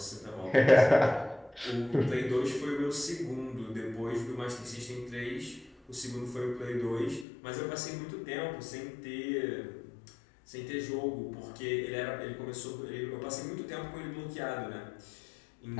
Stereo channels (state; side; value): drops out; right; at 7.2 s